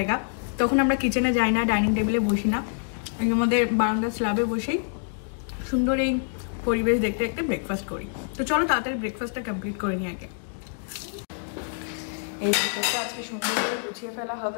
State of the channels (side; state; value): right; silent; digital silence